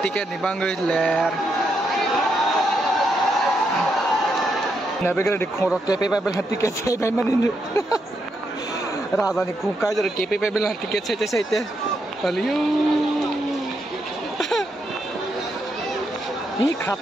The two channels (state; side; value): normal; both; correlation 0.80